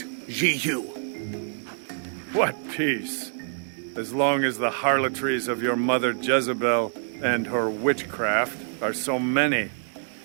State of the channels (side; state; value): left; silent; digital silence